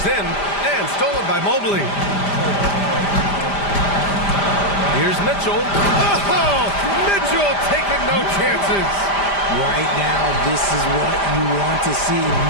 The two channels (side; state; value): right; late; 5.0 ms